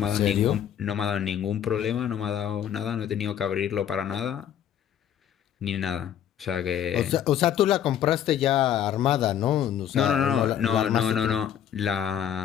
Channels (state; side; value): quieter; right; 9.8 dB